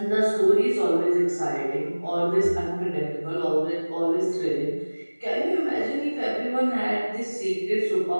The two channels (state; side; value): inverted; both; correlation -1.00